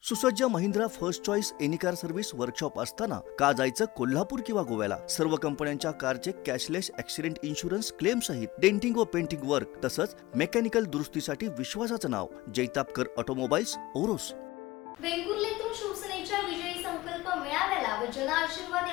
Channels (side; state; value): right; quieter; 18.8 dB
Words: सुसज्ज Mahindra first choice any car service workshop असताना का जायचं कोल्हापूर किंवा गोव्याला? सर्व कंपन्यांच्या कारचे कॅशलेस ॲक्सिडेंट इन्शुरन्स क्लेम सहित डेंटिंग व पेंटिंग वर्क तसंच मेकॅनिकल दुरुस्तीसाठी विश्वासाचं नाव जैतापकर ऑटोमोबाईल्स ओरोस. वेंगुर्लेतून शिवसेनेच्या विजयी संकल्प मेळाव्याला व जन आशीर्वाद